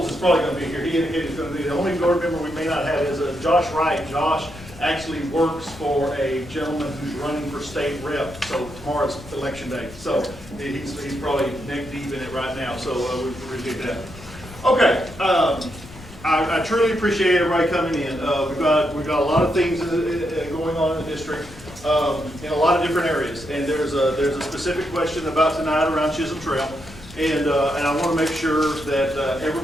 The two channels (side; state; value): left; noise; rumble, 18 dB below the sound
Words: is probably going to be here. He indicated he's going to be the only board member we may not have is Josh Wright. Josh actually works for a gentleman who's running for state rep. So tomorrow's election day. So he's probably neck deep in it right now. So we appreciate that. Okay. I truly appreciate everybody coming in. We've got a lot of things going on in the district in a lot of different areas. And there's a specific question about tonight around Chisholm Trail. And I want to make sure that